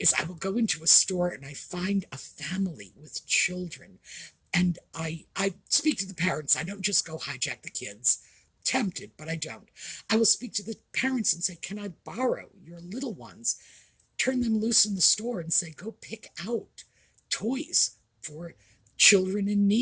I will go into a store and I find a family with children, and I speak to the parents. I don't just go hijack the kids. Tempted, but I don't. I will speak to the parents and say, can I borrow your little ones? Turn them loose in the store and say, go pick out toys for children in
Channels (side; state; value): both; identical; correlation 1.00